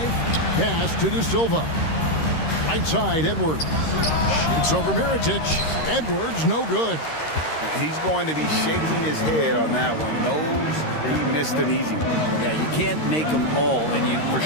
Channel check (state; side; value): late; right; 13 ms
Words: pass to De Silva. Right side, Edwards. Shoots over Mirotic. Edwards, no good. He's going to be shaking his head on that one. Knows he missed an easy one. Yeah, you can't make them all, and you for